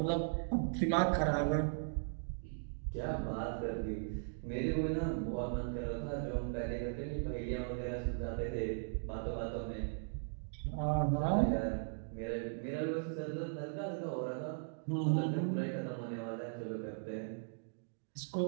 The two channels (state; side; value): silent; left; digital silence